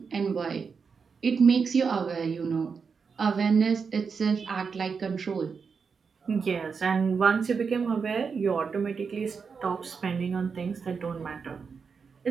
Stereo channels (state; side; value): quieter; left; 5.6 dB